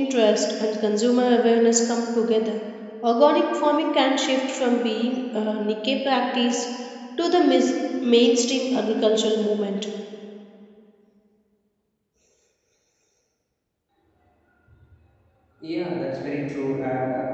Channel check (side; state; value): both; identical; correlation 1.00